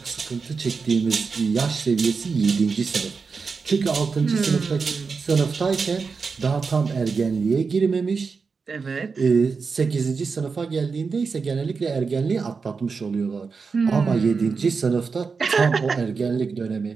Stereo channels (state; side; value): quieter; left; 5.0 dB